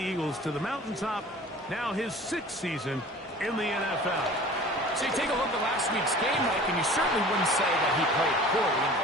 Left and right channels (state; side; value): normal; both; correlation 0.44